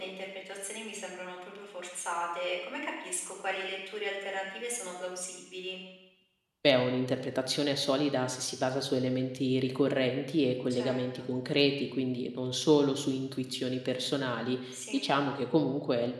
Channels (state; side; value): identical; both; correlation 1.00